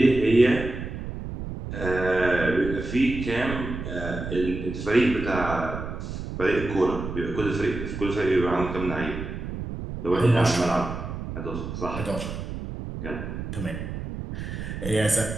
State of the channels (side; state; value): right; noise; rumble, 7 dB below the sound